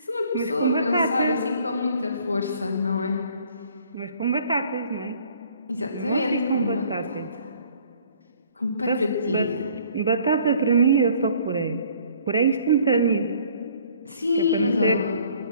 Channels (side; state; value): both; inverted; correlation -0.57